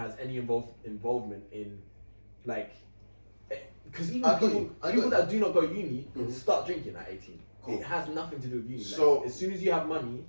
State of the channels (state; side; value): inverted; both; correlation -1.00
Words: any involvement in like, because even people that do not go uni start drinking at 18. Cool. It has nothing to do with uni. So like, as soon as you have money